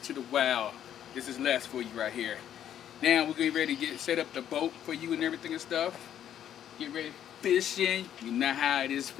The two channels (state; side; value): quieter; right; 10.3 dB